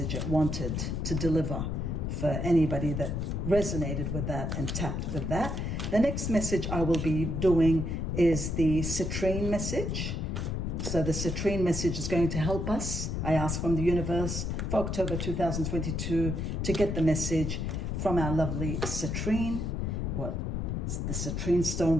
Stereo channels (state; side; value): noise; left; rumble, 2 dB below the sound